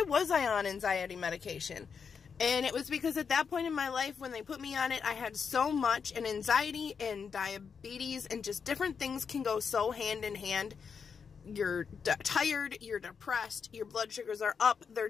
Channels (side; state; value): right; quieter; 6.2 dB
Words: was I on anxiety medication? And it was because at that point in my life when they put me on it, I had so much, and anxiety and diabetes and just different things can go so hand in hand. You're tired, you're depressed, your blood sugars are up, they're